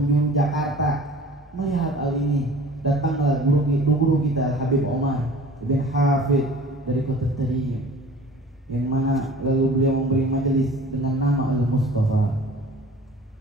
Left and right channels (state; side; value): normal; both; correlation 0.45